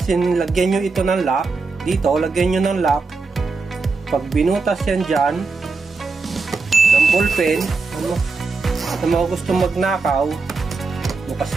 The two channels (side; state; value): left; quieter; 4.2 dB